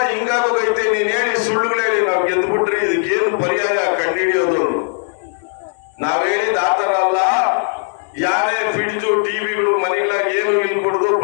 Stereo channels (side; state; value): right; silent; 57 dB below the other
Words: ಹಿಂಗಾಗೋಗೈತೆ, ನೀನ್ ಹೇಳಿ ಸುಳ್ಳುಗಳು ಹೇಳಿ ನಾವ್ ಗೆದ್ದು ಬಿಟ್ರಿ, ಇದಕ್ಕೇನು ಪರ್ಯಾಯ ಕಂಡುಹಿಡಿಯೋದು? ನಾವ್ ಹೇಳಿದ ಆತರ ಅಲ್ಲ. ಯಾರೇ ಫ್ರಿಡ್ಜು ಟಿವಿಗಳು ಮನೆಗಳಾಗ ಏನು ಇಲ್ಲಿ ಕೊಡುದು,